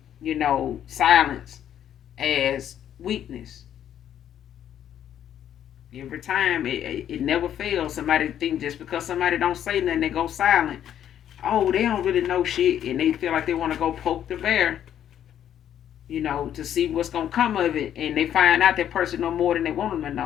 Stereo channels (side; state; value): right; quieter; 10.3 dB